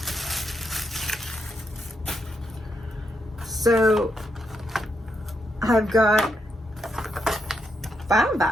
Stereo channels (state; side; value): normal; both; correlation 0.81